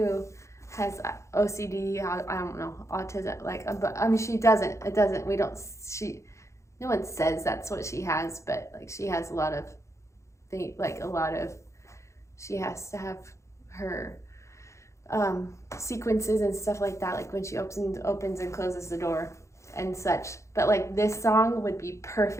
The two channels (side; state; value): right; late; 0.14 ms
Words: has OCD, I don't know, autism, but I mean, she doesn't, no one says that's what she has, but like she has a lot of things, she has to have her sequences and stuff like that, like when she opens and closes the door and such. But like this song would be